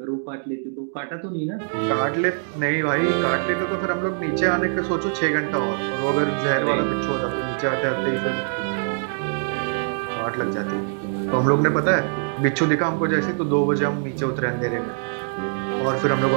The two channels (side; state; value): left; silent; 63 dB below the other